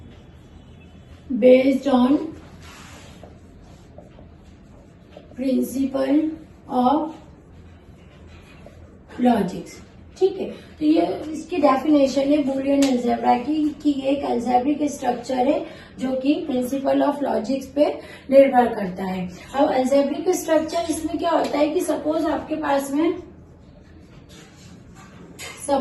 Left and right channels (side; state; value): both; identical; correlation 1.00